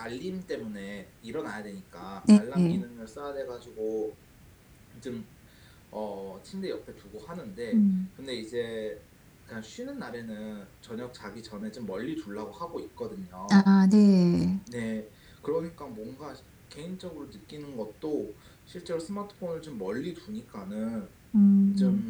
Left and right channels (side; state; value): both; identical; correlation 1.00